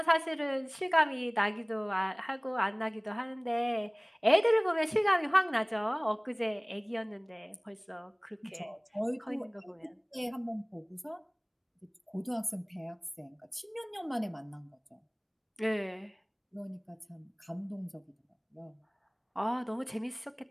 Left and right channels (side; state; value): both; identical; correlation 1.00